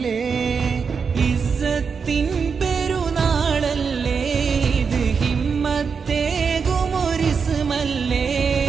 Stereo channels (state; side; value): quieter; left; 5.8 dB